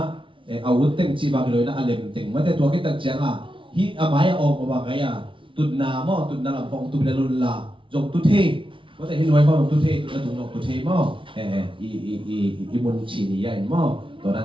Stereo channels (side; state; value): left; late; 0.25 ms